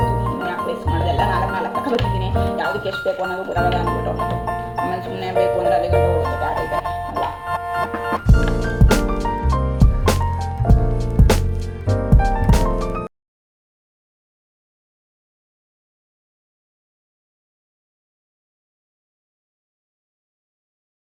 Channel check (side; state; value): both; identical; correlation 1.00